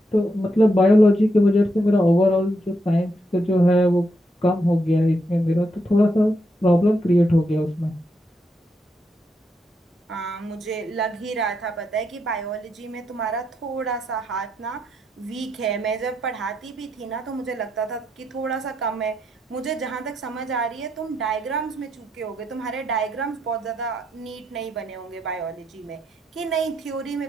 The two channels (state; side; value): normal; both; correlation 0.80